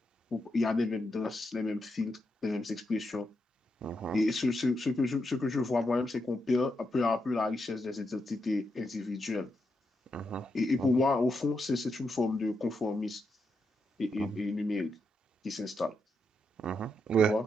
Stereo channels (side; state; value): both; normal; correlation 0.83